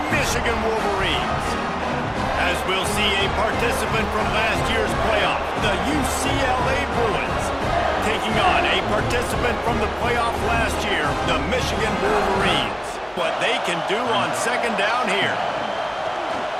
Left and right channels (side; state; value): both; identical; correlation 1.00